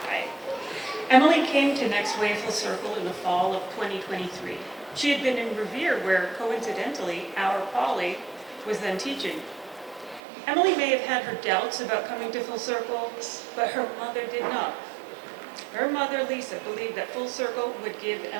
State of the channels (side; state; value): left; drops out; at 10.2 s